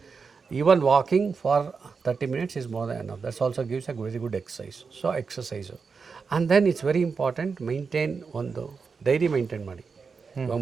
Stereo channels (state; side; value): quieter; left; 5.2 dB